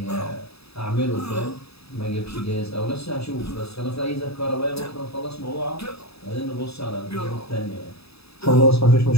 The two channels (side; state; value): right; late; 0.78 ms